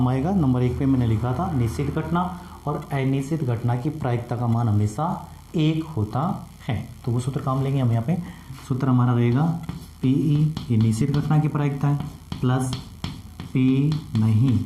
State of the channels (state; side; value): identical; both; correlation 1.00